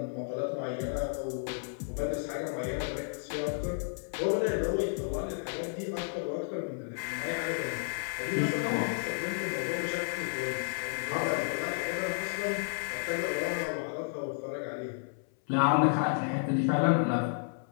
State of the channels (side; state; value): right; silent; 56 dB below the other